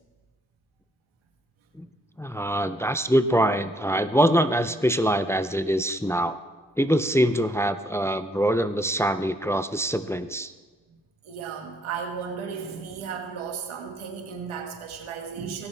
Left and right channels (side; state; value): both; normal; correlation 0.69